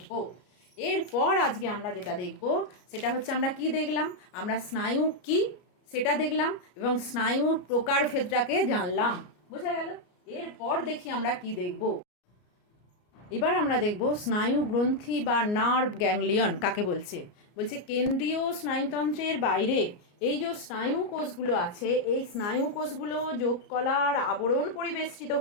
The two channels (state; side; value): late; right; 33 ms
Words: এরপর আজকে আমরা যেটা দেখব সেটা হচ্ছে, আমরা কি দেখলাম, আমরা স্নায়ু কি সেটা দেখলাম এবং স্নায়ুর প্রকারভেদটাকে জানলাম। বোঝা গেল? এরপর দেখি আমরা কি দেখব। এবার আমরা দেখব স্নায়ু গ্রন্থি বা নার্ভ গ্যাংলিয়ন কাকে বলছে। বলছে কেন্দ্রীয় স্নায়ুতন্ত্রের বাইরে এই যে স্নায়ু কোষগুলো আছে, এই স্নায়ু কোষগুলো যোগকলার আবরণ পরিবেষ্টিত